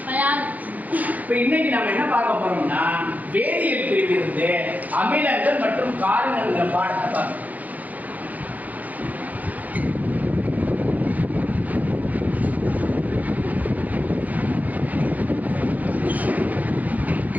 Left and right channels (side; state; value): left; late; 0.079 ms